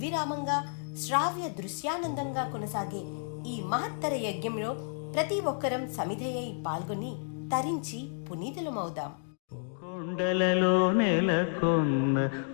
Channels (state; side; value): silent; right; digital silence